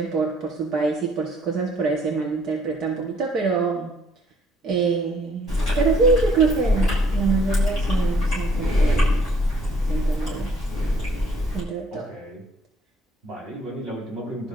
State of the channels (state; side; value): normal; both; correlation 0.62